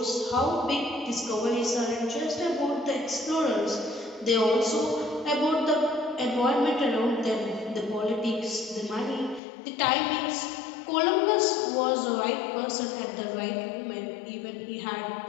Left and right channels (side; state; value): right; drops out; at 9.4 s